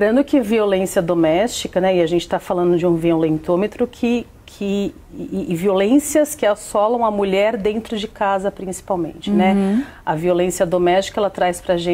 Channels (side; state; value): both; identical; correlation 1.00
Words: que violência doméstica, né, e a gente está falando de um violentômetro e violências que assolam a mulher dentro de casa, principalmente, né? A violência doméstica, ela traz pra